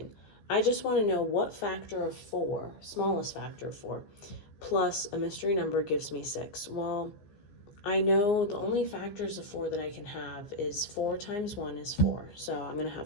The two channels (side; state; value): right; late; 15 ms